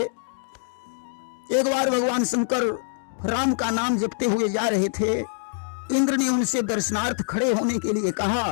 एक बार भगवान शंकर राम का नाम जपते हुए जा रहे थे। इंद्र ने उनसे दर्शनार्थ खड़े होने के लिए कहा।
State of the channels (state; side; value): silent; right; digital silence